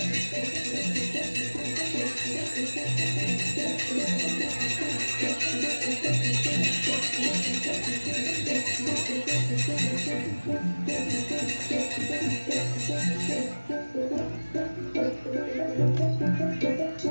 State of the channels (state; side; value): inverted; both; correlation -1.00